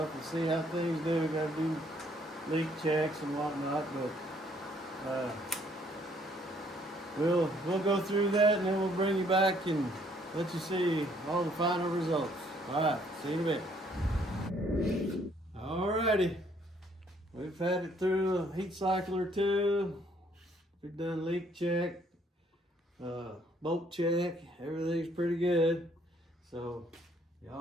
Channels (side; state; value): both; normal; correlation 0.65